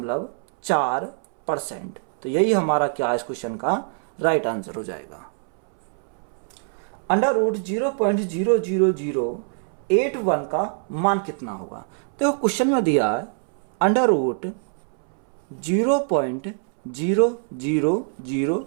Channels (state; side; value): silent; left; 63 dB below the other